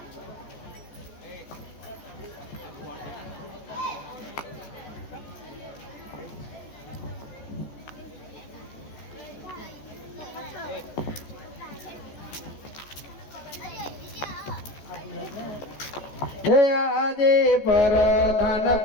હે આજે પરધાન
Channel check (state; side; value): late; right; 14 ms